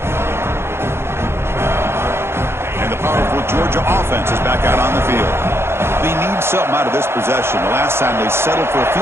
Powerful Georgia offense is back out on the field. They need something out of this possession. The last time they settled for a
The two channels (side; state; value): left; late; 0.12 ms